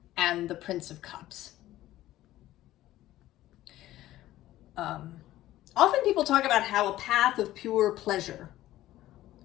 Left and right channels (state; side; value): quieter; right; 14.9 dB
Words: and the Prince of Cups. Often people talk about how a path of pure pleasure